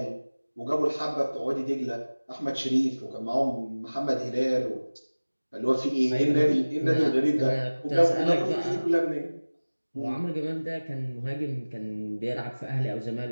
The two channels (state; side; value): inverted; both; correlation -1.00